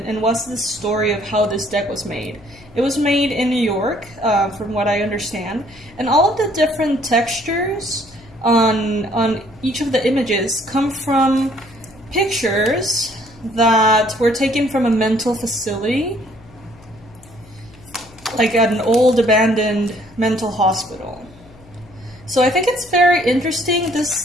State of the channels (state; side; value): noise; left; hum, 24 dB below the sound